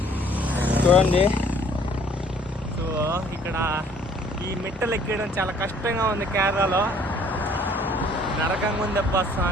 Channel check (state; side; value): normal; both; correlation 0.59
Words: చూడండి. సో ఇక్కడ ఈ మెట్టలు ఎక్కడం చాలా కష్టంగా ఉంది కేరళలో, నరకంగా ఉంది అబ్బా